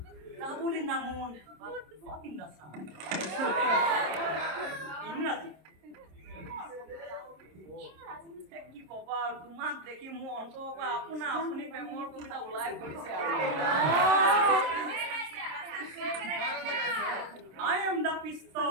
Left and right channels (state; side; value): late; left; 26 ms